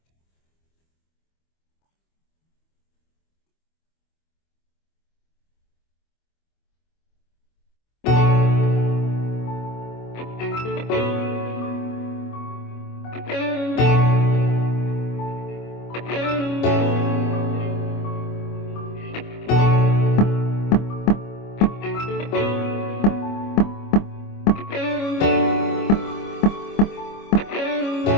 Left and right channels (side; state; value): right; late; 25 ms